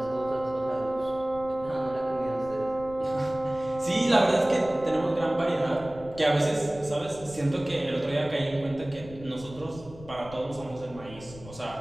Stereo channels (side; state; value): left; noise; rumble, 17 dB below the sound